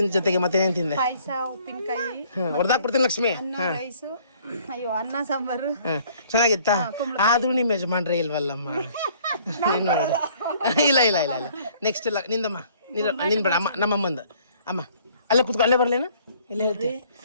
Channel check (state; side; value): inverted; both; correlation -0.59